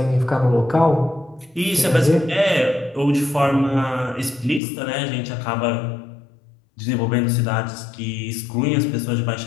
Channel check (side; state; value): right; drops out; at 4.6 s